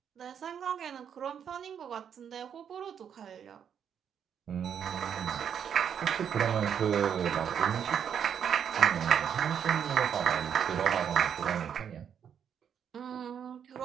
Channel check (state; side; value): quieter; left; 8.2 dB